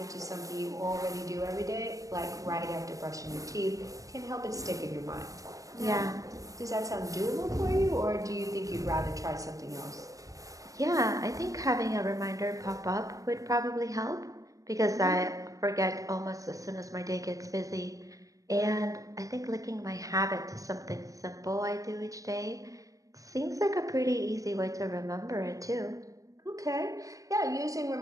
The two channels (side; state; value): left; late; 0.16 ms